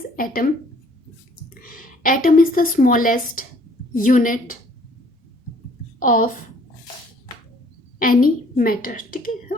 atom? Atom is the smallest unit of any matter. ठीक है,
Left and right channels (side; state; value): both; normal; correlation 0.59